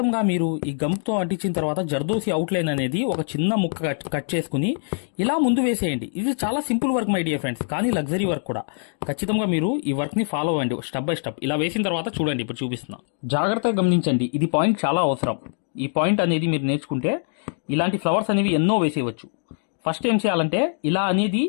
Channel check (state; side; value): silent; right; digital silence